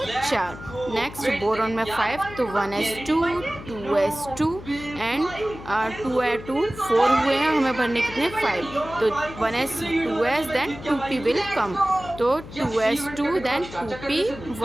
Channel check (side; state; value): left; noise; hum, 14 dB below the sound